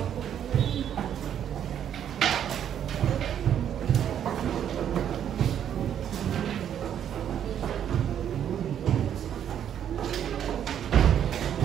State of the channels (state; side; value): quieter; left; 9.5 dB